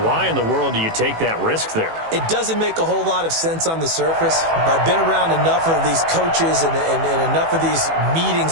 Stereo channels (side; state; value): left; late; 18 ms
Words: why in the world do you take that risk there? It doesn't make a whole lot of sense on the surface. I've been around enough of these coaches and enough of these meetings